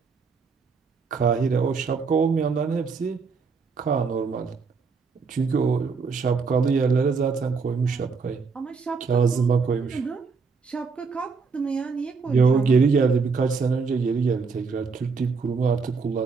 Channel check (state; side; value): quieter; left; 5.0 dB